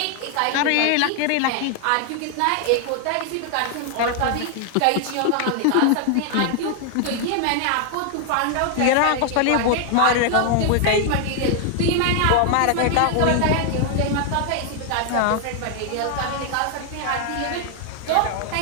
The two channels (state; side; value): different; both; correlation 0.00